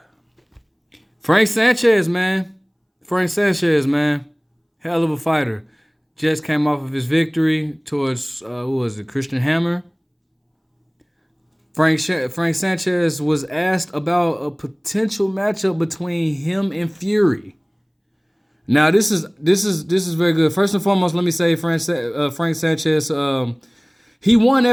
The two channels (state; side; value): identical; both; correlation 1.00